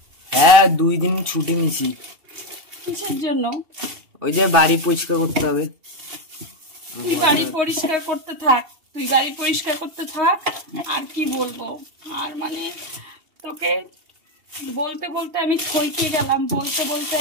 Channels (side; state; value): left; late; 2.7 ms